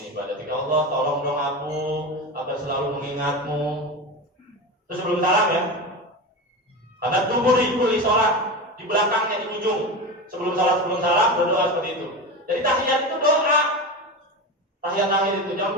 ibadatik. Allah, tolong dong aku agar selalu mengingatmu. Terus sebelum salam ya. Karena duburi kulli shalah, di belakangnya di ujung. Sebelum salam berdoa seperti itu. Jadi tahiyat itu doa. Tahiyat akhir itu jangan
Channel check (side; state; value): both; normal; correlation 0.23